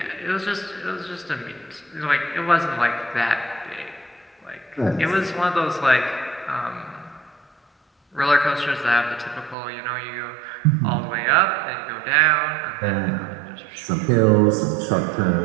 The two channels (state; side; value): drops out; left; at 9.6 s